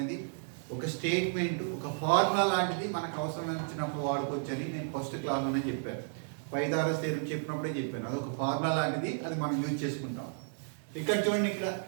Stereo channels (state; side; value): silent; left; digital silence